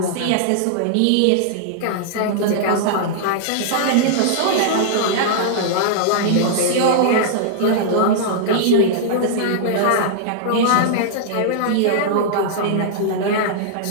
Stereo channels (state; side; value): different; both; correlation -0.02